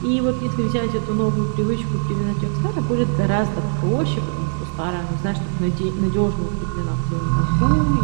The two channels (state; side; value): silent; left; digital silence